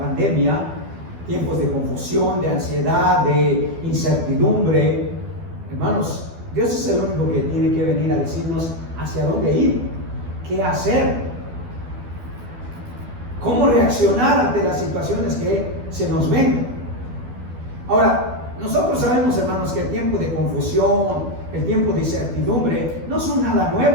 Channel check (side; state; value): left; late; 12 ms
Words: tiempos de confusión, de ansiedad, de incertidumbre. Hermanos, Dios es el único que tiene que venir a decirnos hacia dónde ir, qué hacer, cómo reaccionar ante las situaciones que se nos ven. Ahora, nosotros sabemos, hermanos, que el tiempo de confusión, el tiempo de incertidumbre, no son nada